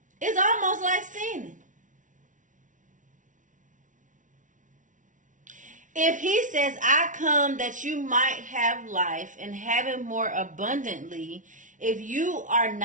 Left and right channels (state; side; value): late; left; 0.37 ms